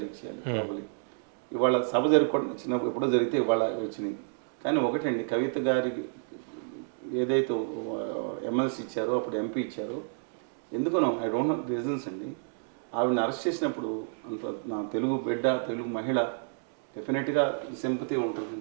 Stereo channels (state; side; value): silent; left; digital silence